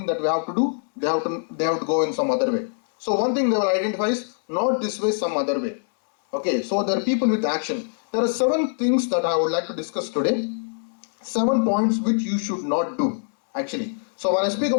that we have to do. They have to go in some other way. So one thing they will identify is not this way, some other way. Okay, so there are people with action. There are 7 things that I would like to discuss today. 7 points which you should not do, actually. So when I speak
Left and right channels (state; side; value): silent; right; 63 dB below the other